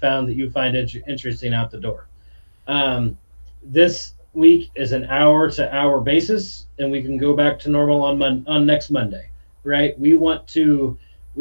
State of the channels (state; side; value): inverted; both; correlation -1.00